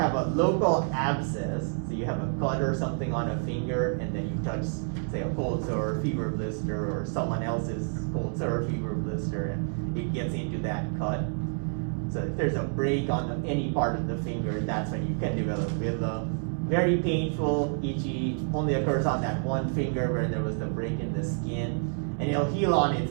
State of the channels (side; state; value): left; silent; 59 dB below the other